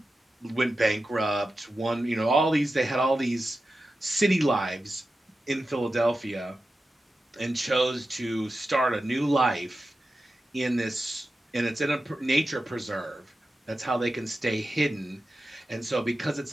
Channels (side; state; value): both; normal; correlation 0.92